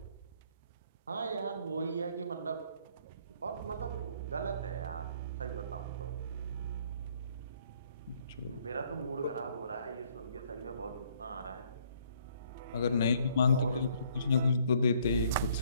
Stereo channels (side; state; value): both; inverted; correlation -0.64